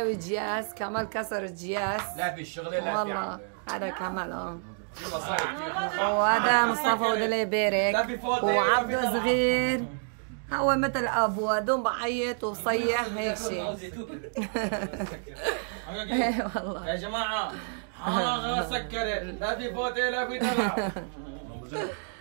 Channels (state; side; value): silent; left; 59 dB below the other